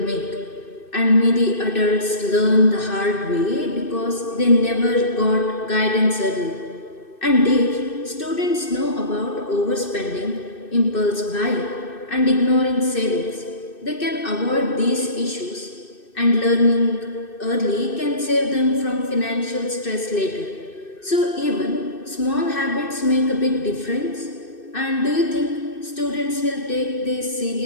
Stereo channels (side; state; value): right; late; 2.6 ms